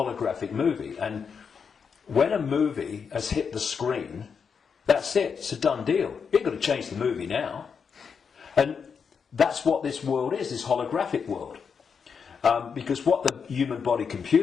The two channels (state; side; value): quieter; right; 6.2 dB